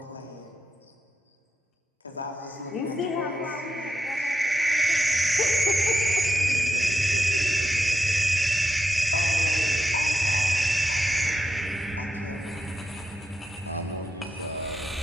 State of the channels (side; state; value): both; normal; correlation 0.84